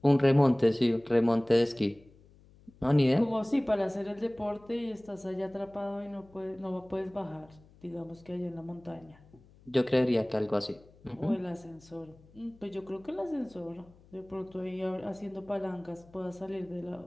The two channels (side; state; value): left; noise; hum, 26 dB below the sound